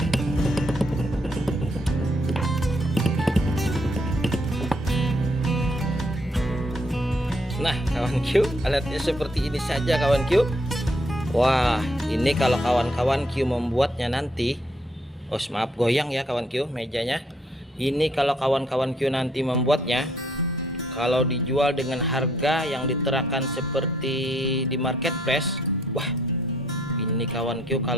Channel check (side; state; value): both; normal; correlation 0.70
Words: Nah kawan Q, alatnya seperti ini saja kawan Q. Wah, ini kalau kawan-kawan Q membuatnya nanti, maaf goyang ya kawan Q mejanya. Ini kalau kawan-kawan Q nanti membuatnya, kalau dijual dengan harga yang diterakan seperti di marketplace, wah ini kawan Q,